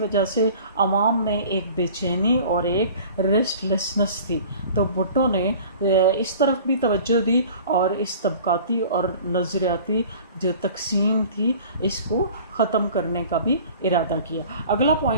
سے عوام میں ایک بے چینی اور ایک ریسٹ لیسنس تھی۔ تو بھٹو نے اس طرف بھی توجہ دی اور اس طبقاتی اور نظریاتی جو تقسیم تھی اس کو ختم کرنے کا بھی ارادہ کیا۔ اگلا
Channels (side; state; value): both; inverted; correlation -0.45